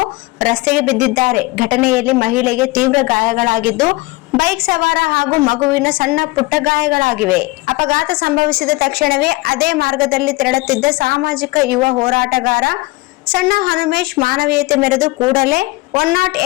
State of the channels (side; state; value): right; quieter; 22.2 dB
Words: ರಸ್ತೆಗೆ ಬಿದ್ದಿದ್ದಾರೆ. ಘಟನೆಯಲ್ಲಿ ಮಹಿಳೆಗೆ ತೀವ್ರ ಗಾಯಗಳಾಗಿದ್ದು, ಬೈಕ್ ಸವಾರ ಹಾಗೂ ಮಗುವಿನ ಸಣ್ಣ ಪುಟ್ಟ ಗಾಯಗಳಾಗಿವೆ. ಅಪಘಾತ ಸಂಭವಿಸಿದ ತಕ್ಷಣವೇ ಅದೇ ಮಾರ್ಗದಲ್ಲಿ ತೆರಳುತ್ತಿದ್ದ ಸಾಮಾಜಿಕ ಯುವ ಹೋರಾಟಗಾರ ಸಣ್ಣ ಹನುಮೇಶ್ ಮಾನವೀಯತೆ ಮೆರೆದು ಕೂಡಲೇ